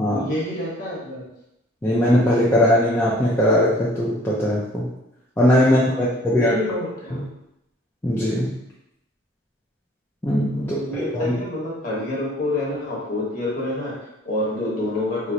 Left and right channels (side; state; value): both; normal; correlation 0.55